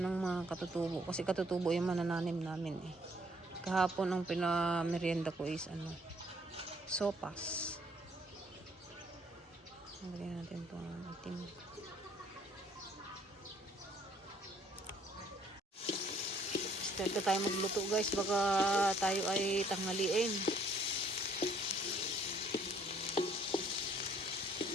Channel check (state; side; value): normal; both; correlation 0.63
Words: mga katutubo. Kasi katutubo yung manananim namin eh. Kahapon ang pinamerienda ko is sopas. Lagyan natin itong itim. Start na tayo magluto guys. Baka tayo ay tanghaliin.